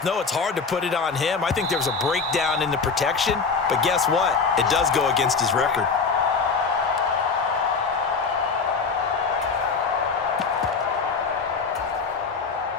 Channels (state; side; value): quieter; right; 5.0 dB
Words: know it's hard to put it on him. I think there was a breakdown in the protection, but guess what? It does go against his record.